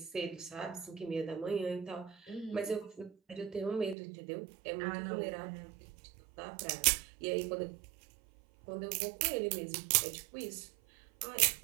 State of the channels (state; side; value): drops out; left; at 4.0 s